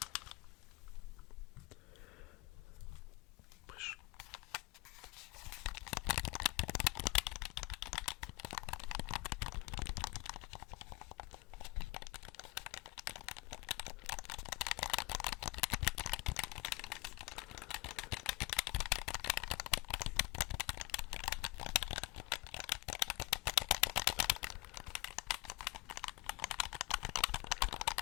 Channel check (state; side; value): quieter; right; 24.7 dB